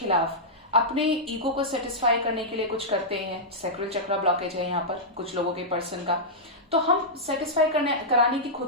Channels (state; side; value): normal; both; correlation -0.10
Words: अपने ईगो को सेटिस्फाई करने के लिए कुछ करते हैं, सैक्रल चक्र ब्लॉकेज है यहाँ पर कुछ लोगों के पर्सन का, तो हम सेटिस्फाई कराने की